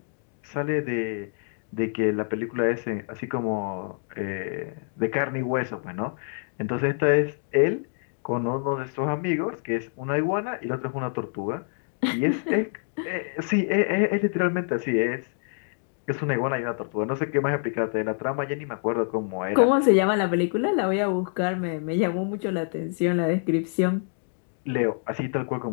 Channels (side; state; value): right; silent; digital silence